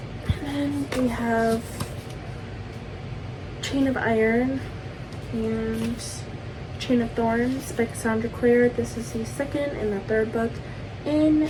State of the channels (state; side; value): identical; both; correlation 1.00